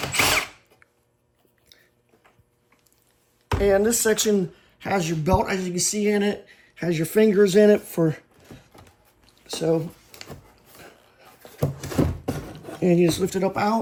And this section has your belt, as you can see in it, has your fingers in it and you just lift it up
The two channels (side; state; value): both; identical; correlation 1.00